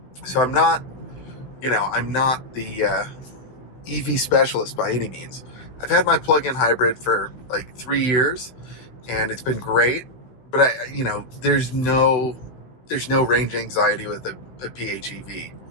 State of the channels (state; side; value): late; right; 16 ms